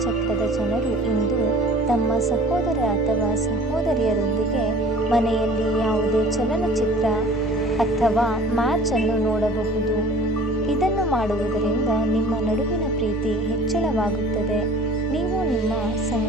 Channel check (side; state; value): both; normal; correlation 0.48